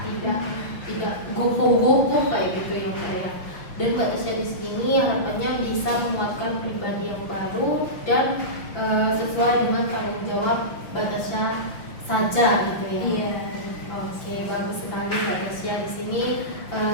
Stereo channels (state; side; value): late; right; 5.7 ms